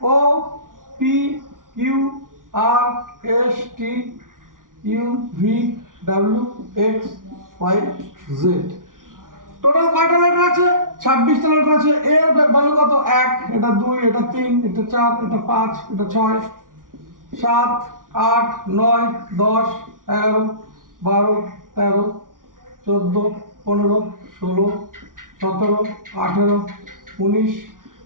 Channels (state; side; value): late; left; 0.89 ms